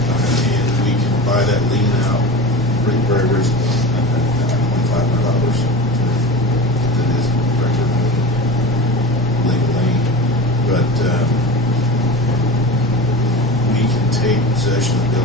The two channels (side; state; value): both; normal; correlation 0.31